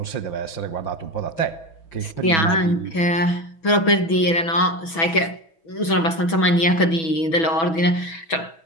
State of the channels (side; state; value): right; late; 6.1 ms